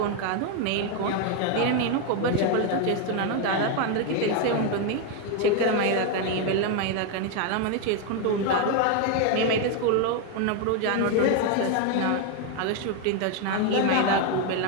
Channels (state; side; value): different; both; correlation 0.01